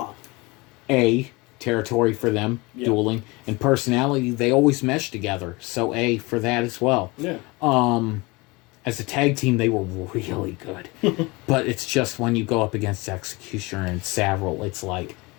A, territory for them, dueling. And personality, they always mesh together, so A for that as well. Yeah. As a tag team, they were really good. But it's just when you go up against Executioner and Savril, it's like,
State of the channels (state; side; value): quieter; right; 24.6 dB